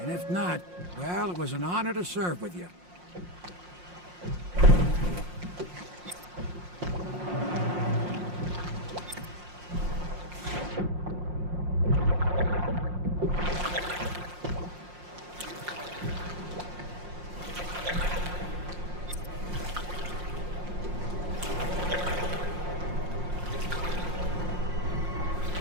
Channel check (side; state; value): left; late; 5.6 ms